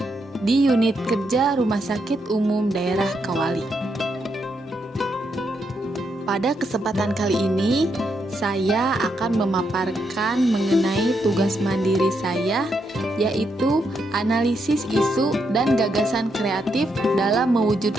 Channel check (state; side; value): normal; both; correlation 0.80